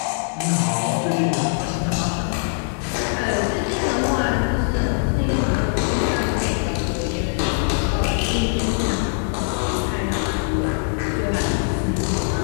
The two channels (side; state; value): right; silent; digital silence